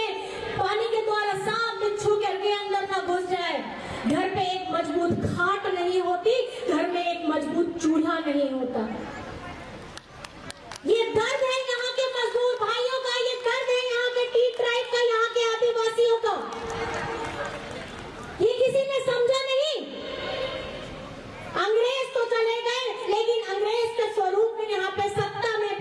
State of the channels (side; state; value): both; identical; correlation 1.00